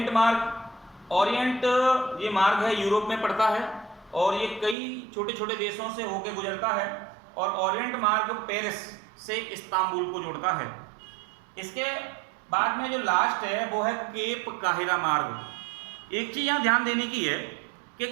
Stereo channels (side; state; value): left; drops out; at 4.8 s